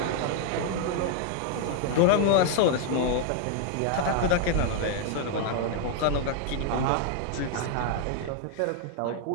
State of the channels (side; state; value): both; different; correlation 0.00